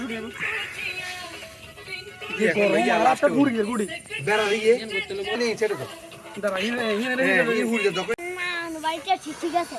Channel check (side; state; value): both; identical; correlation 1.00